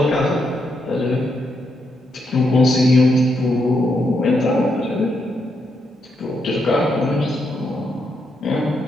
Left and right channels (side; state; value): both; normal; correlation 0.80